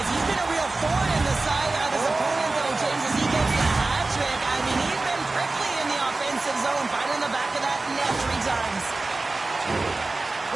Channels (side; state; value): left; quieter; 3.3 dB